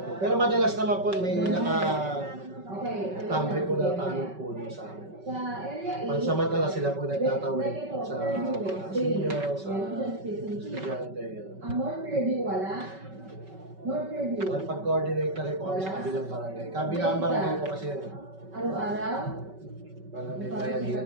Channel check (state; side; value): late; left; 5.3 ms